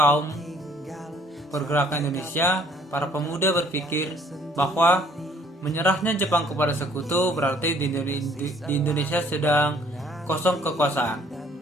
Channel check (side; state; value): both; normal; correlation 0.60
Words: pergerakan Indonesia, para pemuda berpikir bahwa menyerahnya Jepang kepada sekutu berarti di Indonesia sedang kosong kekuasaan.